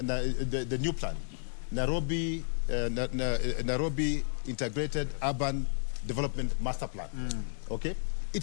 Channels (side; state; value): right; silent; digital silence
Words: new plan, Nairobi Integrated Urban Development Master Plan. Okay?